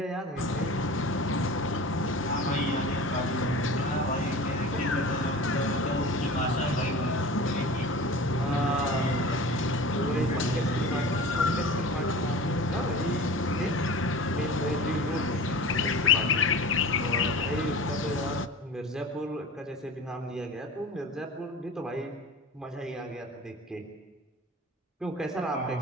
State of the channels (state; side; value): normal; both; correlation 0.36